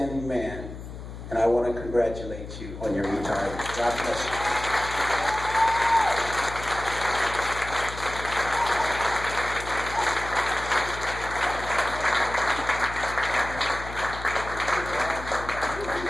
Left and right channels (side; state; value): left; noise; hum, 11 dB below the sound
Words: man, and I want to congratulate you on your retirement. God bless you.